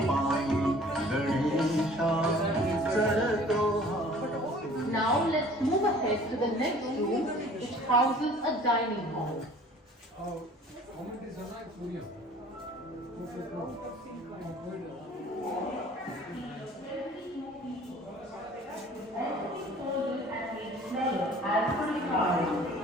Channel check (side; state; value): both; normal; correlation 0.50